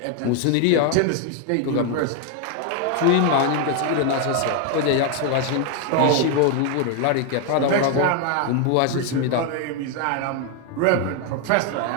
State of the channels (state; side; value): different; both; correlation 0.01